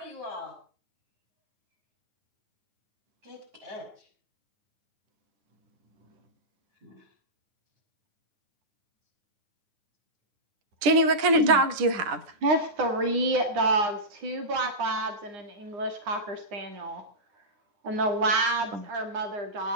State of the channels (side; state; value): left; late; 10 ms